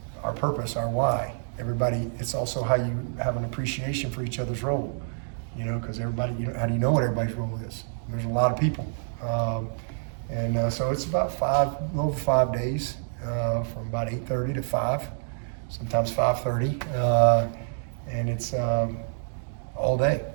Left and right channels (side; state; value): left; silent; digital silence